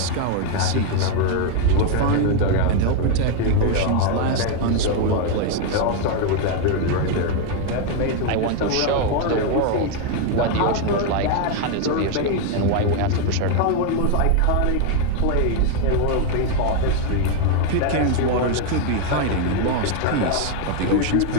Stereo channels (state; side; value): different; both; correlation 0.01